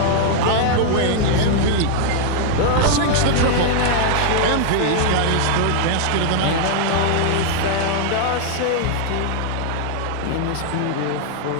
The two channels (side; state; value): both; different; correlation 0.00